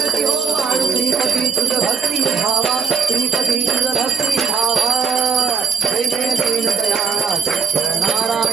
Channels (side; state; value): left; quieter; 6.2 dB